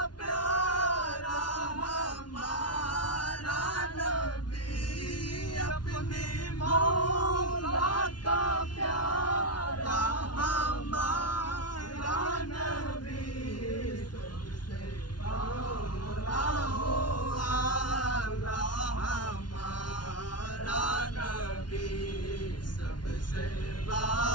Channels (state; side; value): late; right; 0.70 ms